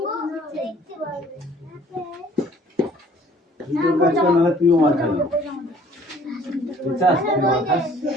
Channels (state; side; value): normal; both; correlation 0.55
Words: তুই তোর কাজ কর, নাহলে তুইও মার খাবি। তুই চাস তুই মার খাস?